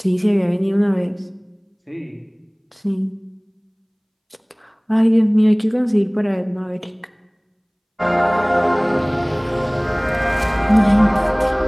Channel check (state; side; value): identical; both; correlation 1.00